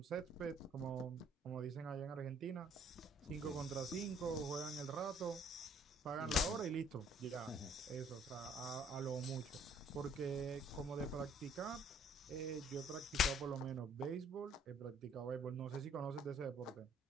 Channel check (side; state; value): both; normal; correlation 0.61